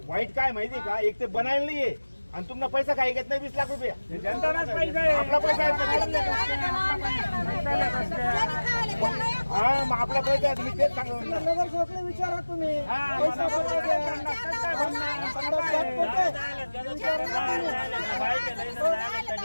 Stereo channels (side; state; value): both; inverted; correlation -1.00